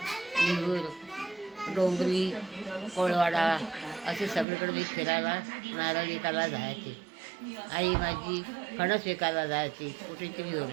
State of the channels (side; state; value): left; drops out; at 4.5 s